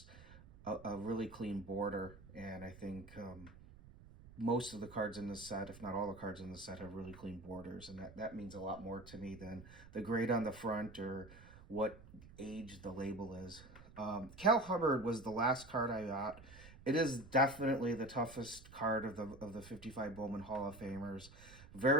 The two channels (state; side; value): noise; right; rumble, 19 dB below the sound